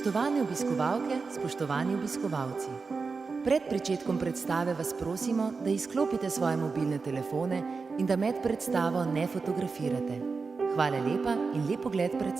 obiskovalke, spoštovani obiskovalci. Pred pričetkom predstave vas prosimo, da izklopite svoje mobilne telefone in da med predstavo ne fotografirate. Hvala lepa in lep ogled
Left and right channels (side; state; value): left; quieter; 4.6 dB